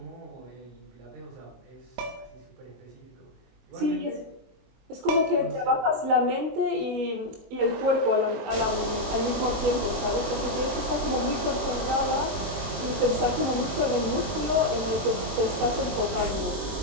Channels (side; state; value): left; late; 23 ms